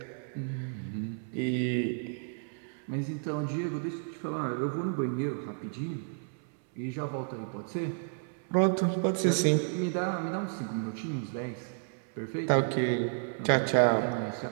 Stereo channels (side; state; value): left; silent; 57 dB below the other